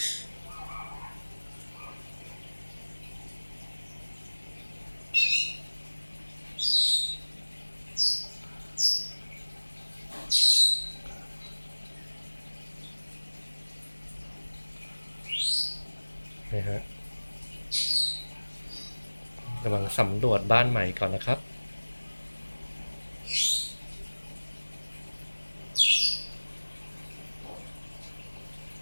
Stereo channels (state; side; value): inverted; both; correlation -1.00